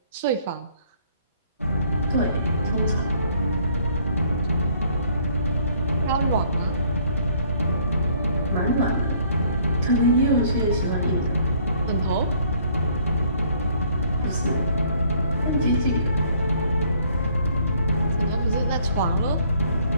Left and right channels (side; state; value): both; inverted; correlation -0.61